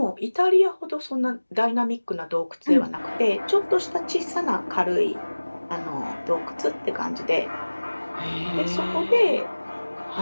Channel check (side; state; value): both; inverted; correlation -1.00